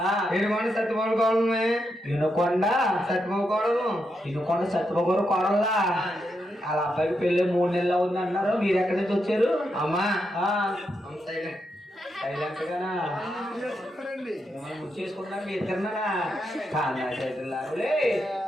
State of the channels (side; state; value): both; normal; correlation 0.83